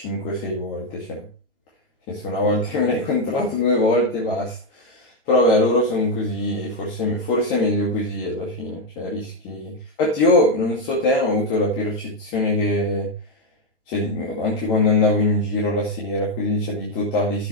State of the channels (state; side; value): normal; both; correlation 0.03